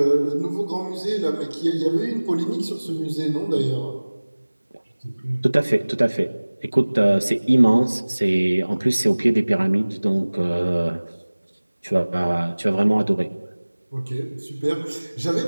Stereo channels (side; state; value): both; inverted; correlation -1.00